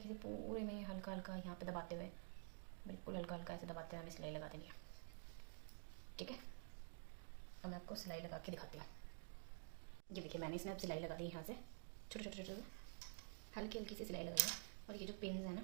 से पूरे में हल्का हल्का यहाँ पे दबाते हुए, बिल्कुल हल्का हल्का ऐसे दबाते हुए हमें सिलाई लगा देनी है। ठीक है, अब मैं आपको सिलाई लगा के दिखाती हूँ। ये देखिए मैंने इसमें अब सिलाई लगा दी, यहाँ से छोटे छोटे छोटे हल्की हल्की सी सिलाई लगाई है। और ये जो पिन्स है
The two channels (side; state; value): left; silent; digital silence